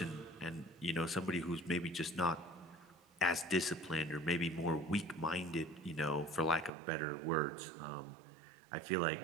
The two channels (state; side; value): drops out; left; at 6.7 s